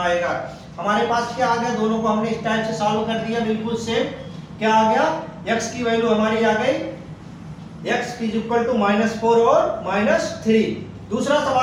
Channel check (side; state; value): both; identical; correlation 1.00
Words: आएगा। हमारे पास क्या आ गया, दोनों को हमने इस टाइप से सॉल्व कर दिया, बिल्कुल सेम। क्या आ गया, x की वैल्यू हमारी आ गई x इज इक्वल टू -4 और -3। दूसरा